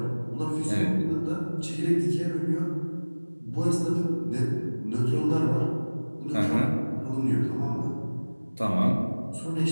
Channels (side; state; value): both; inverted; correlation -1.00